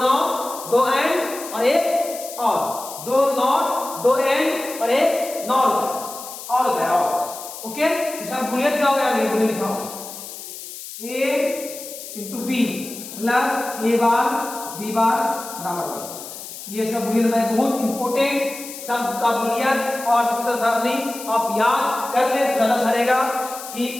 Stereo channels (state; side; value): noise; left; hiss, 12 dB below the sound